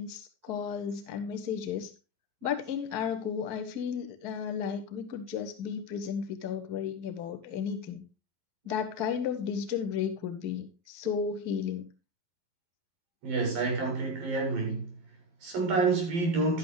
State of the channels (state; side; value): late; left; 11 ms